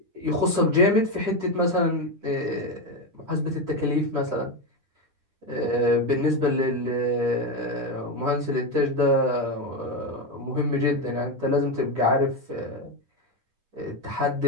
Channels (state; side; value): late; left; 10 ms